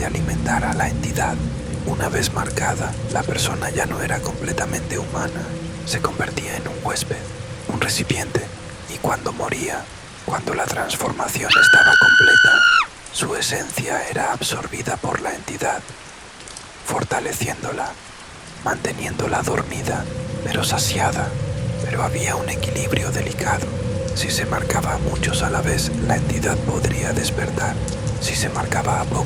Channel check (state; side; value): identical; both; correlation 1.00